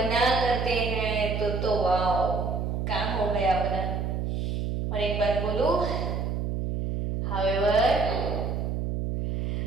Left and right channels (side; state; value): right; noise; hum, 1 dB below the sound